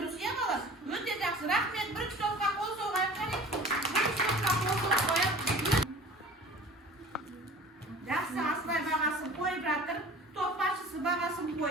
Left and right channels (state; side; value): normal; both; correlation 0.43